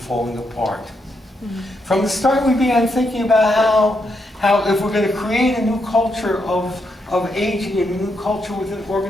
apart. Mm-hmm. From the start, we began thinking about how if we're going to create a new culture of aging and a new culture within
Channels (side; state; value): both; normal; correlation 0.80